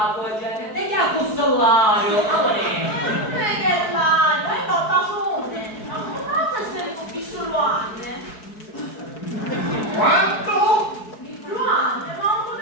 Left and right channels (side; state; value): right; late; 4.6 ms